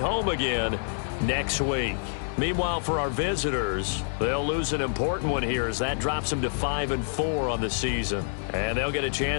again next week. Meanwhile, for our visitors, they'll lose an important one here as that drops them to 5-4 on the season. And they'll get a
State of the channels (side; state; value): right; silent; digital silence